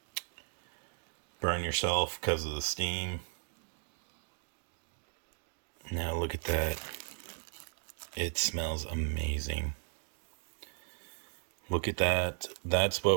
burn yourself because of the steam. Now look at that. It smells amazing. Look at that. That's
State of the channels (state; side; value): silent; left; 54 dB below the other